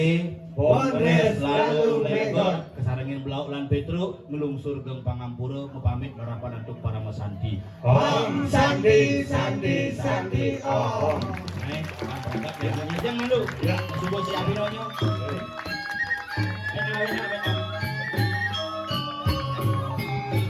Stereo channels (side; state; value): both; identical; correlation 1.00